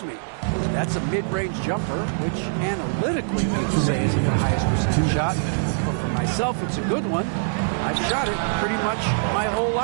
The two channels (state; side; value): silent; left; digital silence